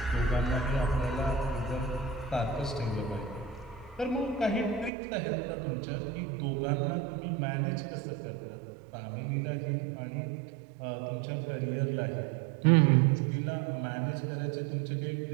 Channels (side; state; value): left; drops out; at 4.9 s